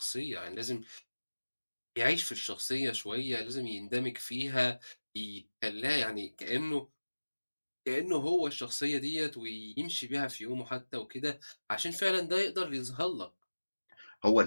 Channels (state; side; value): inverted; both; correlation -1.00